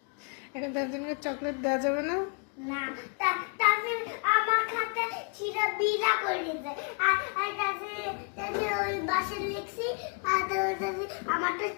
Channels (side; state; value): right; quieter; 37.9 dB